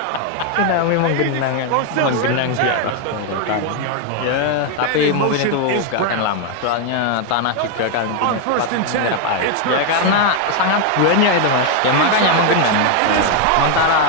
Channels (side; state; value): both; different; correlation 0.01